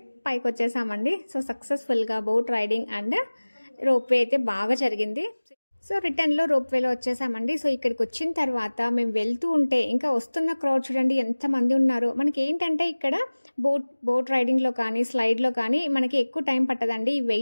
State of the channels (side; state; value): both; inverted; correlation -1.00